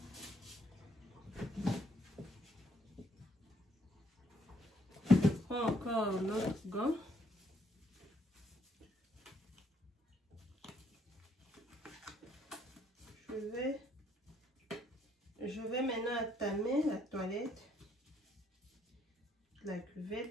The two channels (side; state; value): both; normal; correlation 0.69